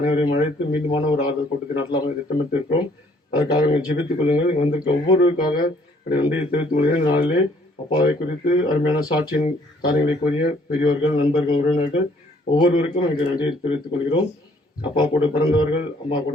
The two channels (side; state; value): both; normal; correlation 0.62